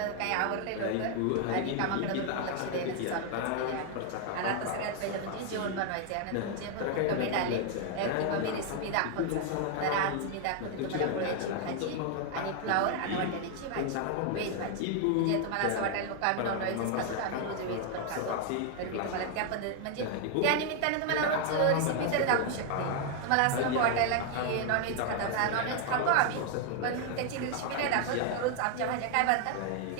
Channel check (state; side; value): different; both; correlation 0.00